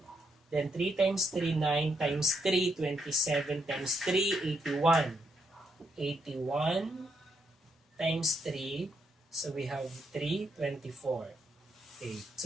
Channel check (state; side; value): normal; both; correlation 0.78